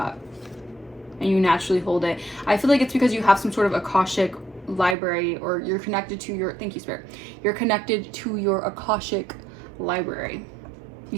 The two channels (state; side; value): drops out; left; at 5.0 s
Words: and you naturally hold it. I feel like it's because you have some sort of Akashic library, or you're connected to your, thank you, Spirit, you're connected to your Akashic library.